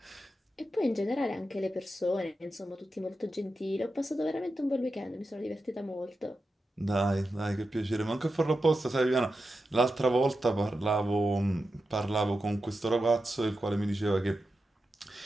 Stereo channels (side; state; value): both; normal; correlation 0.90